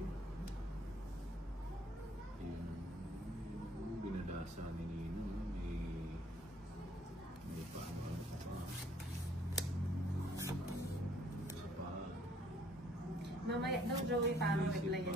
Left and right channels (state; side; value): normal; both; correlation 0.61